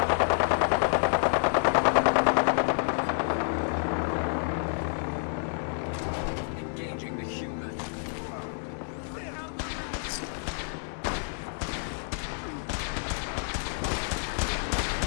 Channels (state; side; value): silent; right; digital silence